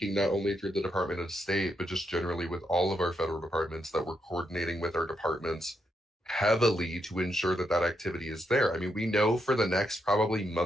not only through the Department of State, but just generally with all of our federal departments, that we're coordinating with our departments heavily to ensure that that activity is there. I mean, we know for the next probably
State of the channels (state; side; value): normal; both; correlation 0.80